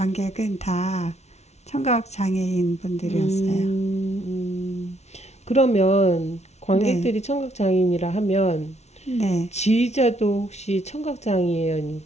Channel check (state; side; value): late; right; 0.32 ms